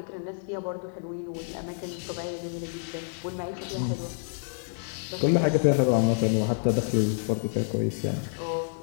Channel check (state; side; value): silent; right; digital silence